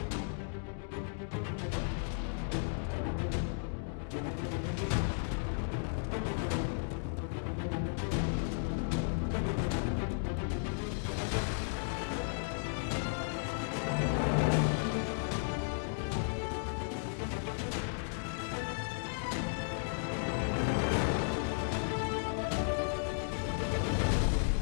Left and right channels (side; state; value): right; silent; digital silence